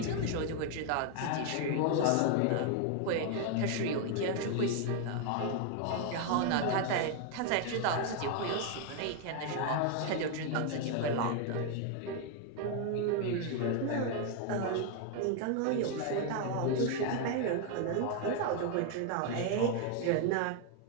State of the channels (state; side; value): different; both; correlation 0.01